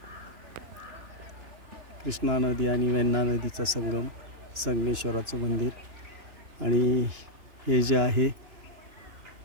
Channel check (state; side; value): late; left; 2.9 ms